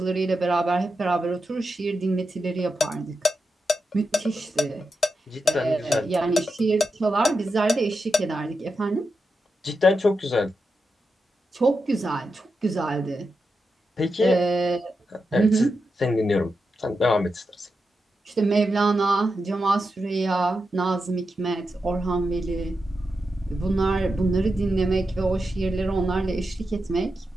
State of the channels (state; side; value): normal; both; correlation 0.88